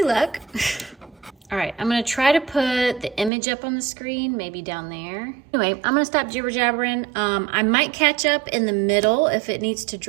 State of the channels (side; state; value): left; drops out; at 3.3 s